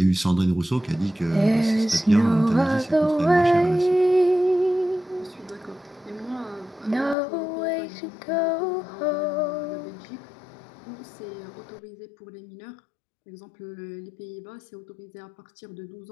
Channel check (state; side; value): drops out; right; at 7.2 s